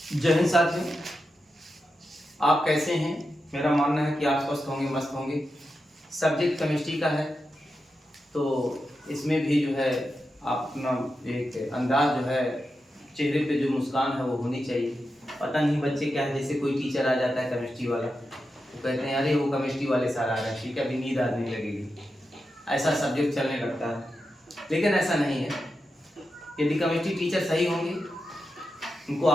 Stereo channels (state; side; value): normal; both; correlation 0.89